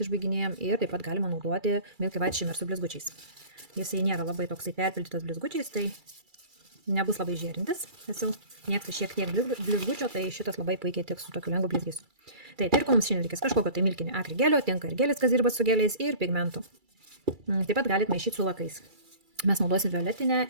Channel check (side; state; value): left; late; 2.3 ms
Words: išbaiginėjom ir taip pat galima naudoti Milky White Shimmer su blizgučiais. Jisai nėra labai toksai perpildytas blizgučiais, tai nebus labai žėrintis. Esu mėgstu šiek tiek blizgučio, tai šitas labai puikiai tiks su tokiu lengvu blizgesiu. Tai ir ko mums šiandien reikės kažkokio tai milkinio akrigelio, tinka ir gelis, kas dirba su geliais, ir pigmentų. Taip pat galite maišyti su lakais. Mes naudosim violetinę